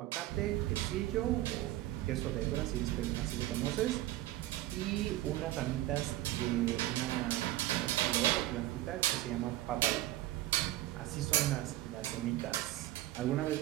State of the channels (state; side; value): quieter; left; 15.6 dB